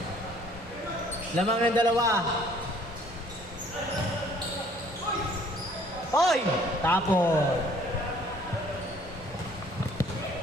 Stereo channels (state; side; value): normal; both; correlation 0.57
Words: Lamang ng dalawa. Oy! Tapon.